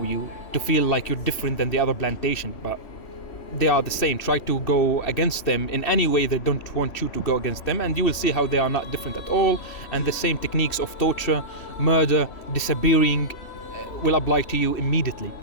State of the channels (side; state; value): right; late; 3.1 ms